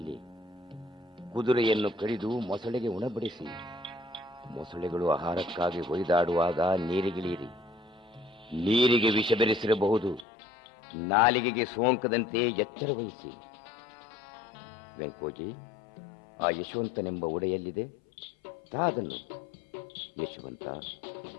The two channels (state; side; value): drops out; right; at 10.2 s